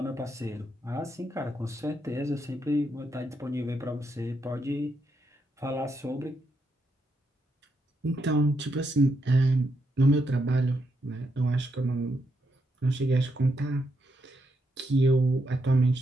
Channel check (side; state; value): both; normal; correlation 0.80